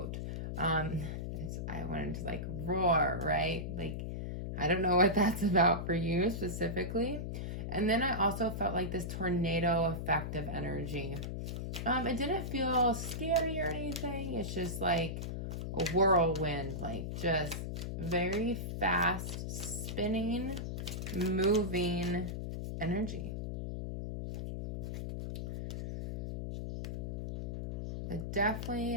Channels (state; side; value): noise; left; hum, 4 dB below the sound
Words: I wanted to like roar, right? Like, I don't know what that's about for you specifically. And then I also felt like this tornado effect of energy. It didn't feel scary or anything. It's just like a whirlwind, like just very fast spinning, moving energy. But definitely